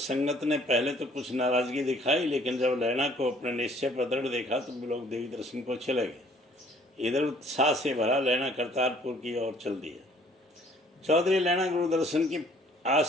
ने पहले तो कुछ नाराजगी दिखाई, लेकिन जब लैना को अपने निश्चय पर दृढ़ देखा तो लोग देवी दर्शन को चले गए। इधर उत्साह से भरा लैना करतारपुर की ओर चल दिया। चौधरी लैना गुरु दर्शन की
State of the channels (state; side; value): normal; both; correlation 0.58